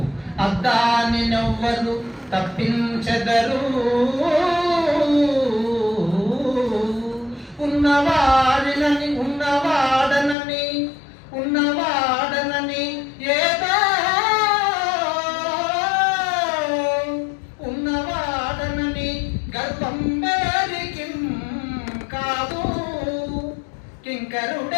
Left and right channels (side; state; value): right; drops out; at 10.4 s